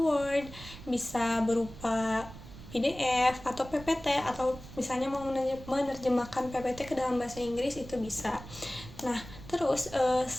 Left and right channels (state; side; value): noise; right; rumble, 15 dB below the sound